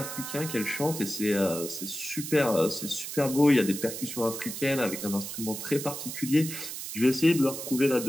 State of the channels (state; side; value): noise; right; hiss, 7 dB below the sound